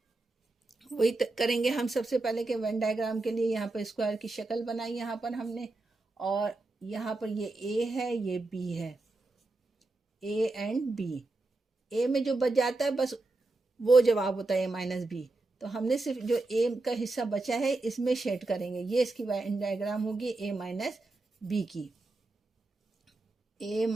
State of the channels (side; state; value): left; quieter; 3.1 dB